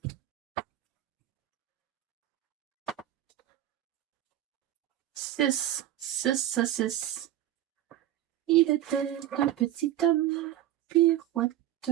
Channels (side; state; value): left; quieter; 13.1 dB